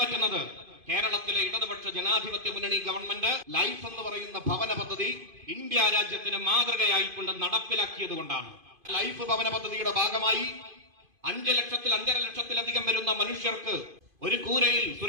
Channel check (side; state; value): left; late; 2.5 ms